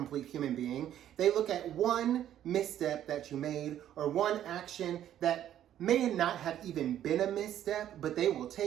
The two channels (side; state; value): left; quieter; 11.2 dB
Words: human being. They look at one misstep that you made or one action that may not have even been a misstep, but they will